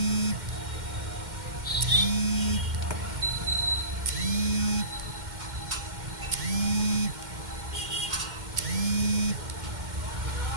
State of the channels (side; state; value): left; late; 2.1 ms